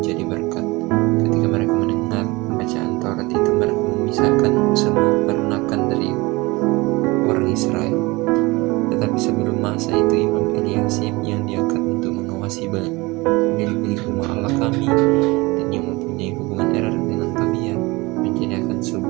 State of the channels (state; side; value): quieter; left; 23.3 dB